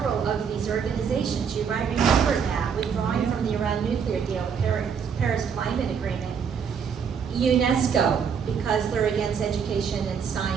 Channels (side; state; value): left; quieter; 6.9 dB